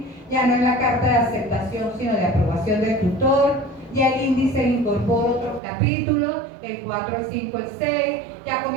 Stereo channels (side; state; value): left; drops out; at 5.6 s